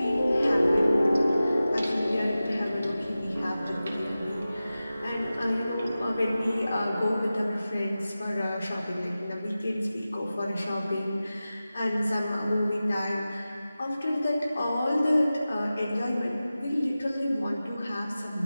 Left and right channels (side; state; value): both; inverted; correlation -0.95